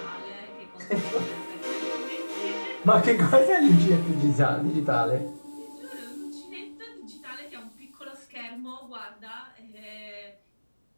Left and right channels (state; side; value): inverted; both; correlation -1.00